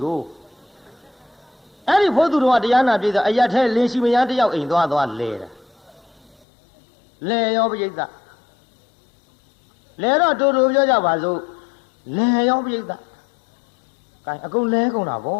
艾丽跑土着话，这样那边的，哎呀，他联系没人，这要印多少来了，来要不就的。来了周表家话说，来要不一个，干阿公来公那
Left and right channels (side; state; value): right; drops out; at 6.4 s